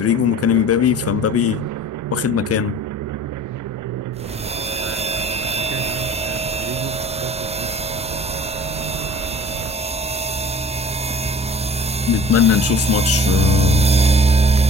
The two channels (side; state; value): both; normal; correlation 0.45